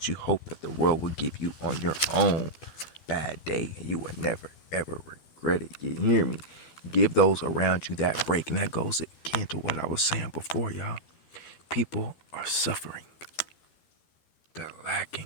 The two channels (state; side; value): late; right; 12 ms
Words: you hope that the world will give you on your own bad day, and you will never, ever regret it. You hear me? Give those around you that break. And that goes again to what I was saying before, y'all. People are suffering. They're lacking,